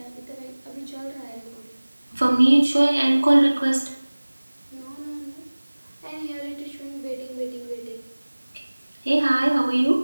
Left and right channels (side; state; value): both; inverted; correlation -1.00